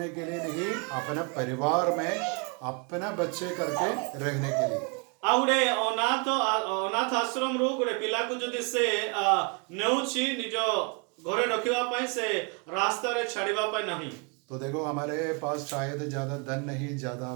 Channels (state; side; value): quieter; left; 33.3 dB